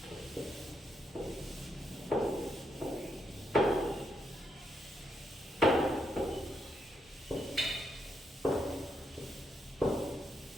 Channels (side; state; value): both; normal; correlation 0.78